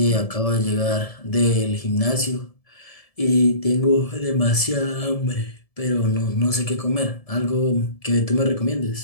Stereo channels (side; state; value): right; late; 1.7 ms